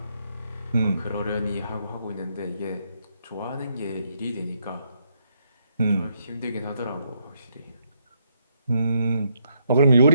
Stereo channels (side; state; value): both; inverted; correlation -0.75